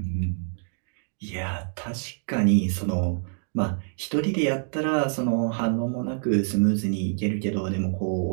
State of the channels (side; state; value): left; silent; digital silence